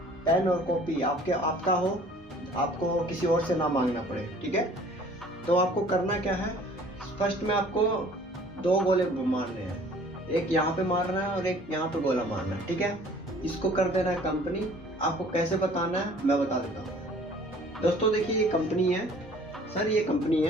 और कॉपी आपका हो, आपको किसी और से ना मांगना पड़े। ठीक है, तो आपको करना क्या है, फर्स्ट में आपको 2 गोले मारने हैं, एक यहाँ पे मारना है और एक यहाँ पे गोला मारना है। ठीक है, इसको कर देना है कंपनी। आपको कैसे बताना है मैं बता देता हूँ। दोस्तों देखिए ये कंपनी है सर, ये कंपनी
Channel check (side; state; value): both; normal; correlation 0.52